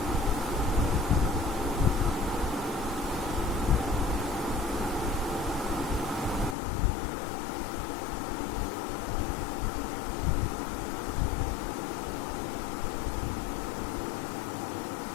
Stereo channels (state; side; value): drops out; right; at 6.6 s